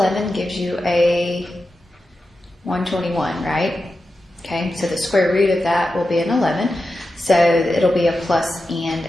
gives you a 121, right? Okay, so the square root of that will be an 11. So it'll be a plus and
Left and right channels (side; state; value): both; normal; correlation 0.91